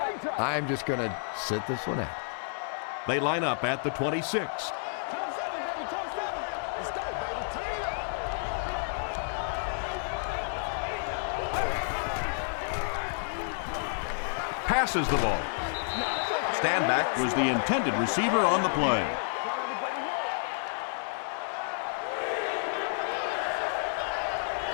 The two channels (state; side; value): silent; right; digital silence